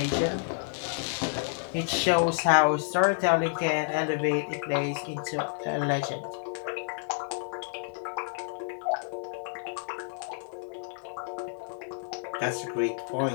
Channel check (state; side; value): silent; right; digital silence